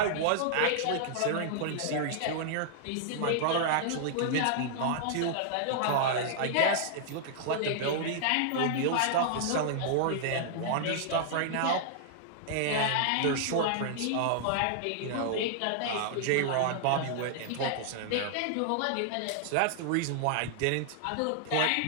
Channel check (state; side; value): different; both; correlation -0.01